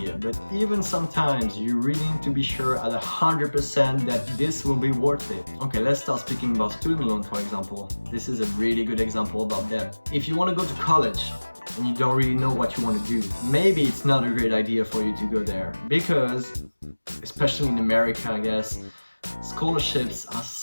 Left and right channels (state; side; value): inverted; both; correlation -1.00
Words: But even sometimes you really need to be sure at 100% that this will be worth it. Okay, let's start speaking about student loan, for example. This is a really good example about debt. If you want to go to college and you don't really know what you want to do, maybe it's not a great idea for you to go there, because especially in America, I guess, scholarships are